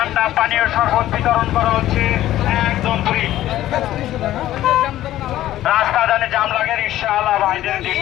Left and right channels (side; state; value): right; quieter; 13.8 dB